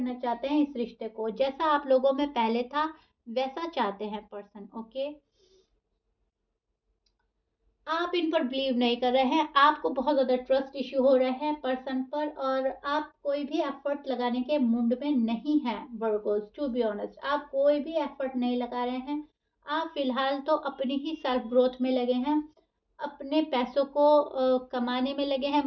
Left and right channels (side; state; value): both; identical; correlation 1.00